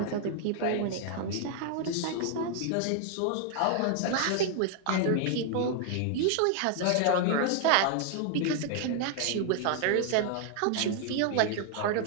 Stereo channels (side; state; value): both; different; correlation 0.00